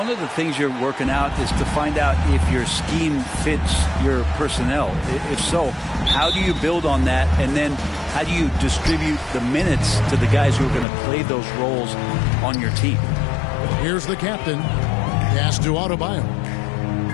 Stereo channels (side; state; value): right; drops out; at 10.9 s